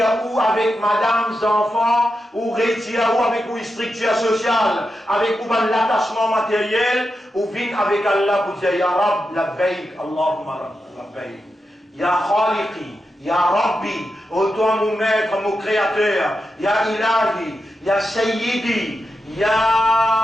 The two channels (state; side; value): normal; both; correlation 0.88